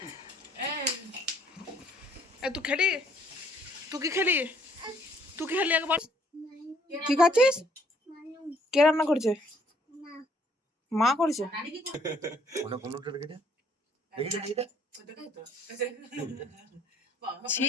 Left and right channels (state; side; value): normal; both; correlation 0.64